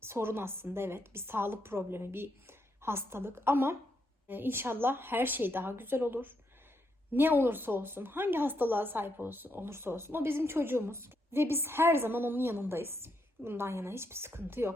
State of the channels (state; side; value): normal; both; correlation 0.79